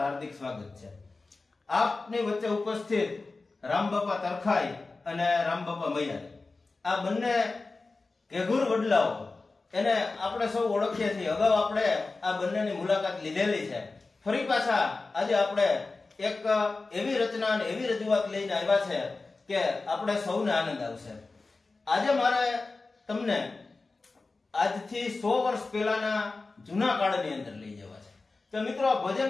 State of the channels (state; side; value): quieter; right; 3.7 dB